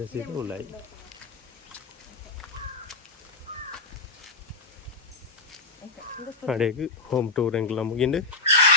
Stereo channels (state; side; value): quieter; right; 3.6 dB